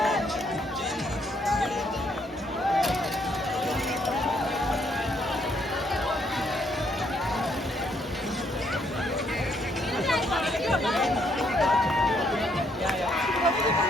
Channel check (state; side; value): normal; both; correlation 0.71